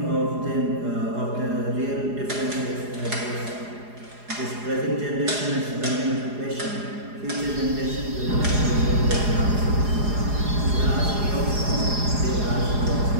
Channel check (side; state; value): left; late; 4.8 ms